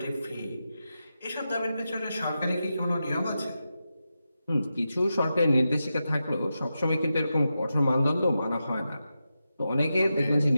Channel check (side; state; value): both; inverted; correlation -0.90